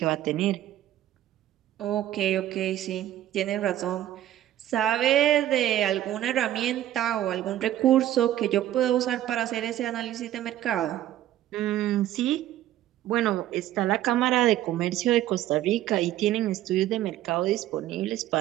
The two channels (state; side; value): quieter; left; 13.0 dB